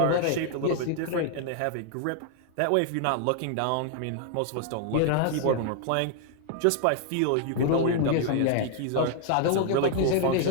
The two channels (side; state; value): both; different; correlation 0.00